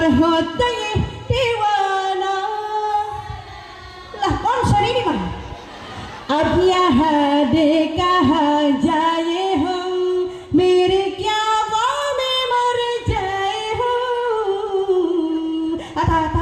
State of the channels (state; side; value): identical; both; correlation 1.00